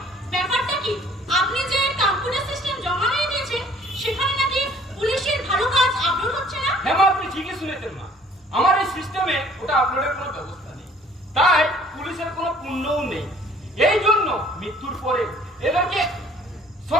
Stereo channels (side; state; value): both; normal; correlation 0.55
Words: ব্যাপারটা কি? আপনি যে কম্পিউটার সিস্টেম জমা দিয়ে দিয়েছেন, সেখানে নাকি পুলিশের ভালো কাজ আপলোড হচ্ছে না? হ্যাঁ মা, আপনি ঠিকই শুনেছেন মা। আমার এই সিস্টেমে ওটা আপলোডের কোনো ব্যবস্থা নেই, তাই পুলিশের কোনো পুণ্যও নেই। এই জন্য মৃত্যুর পরে এদেরকে